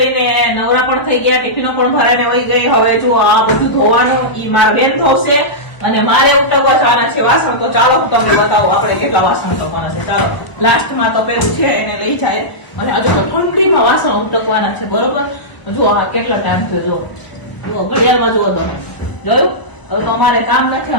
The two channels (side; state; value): right; late; 1.0 ms